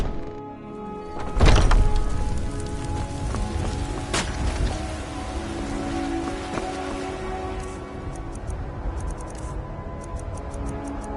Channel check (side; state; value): both; identical; correlation 1.00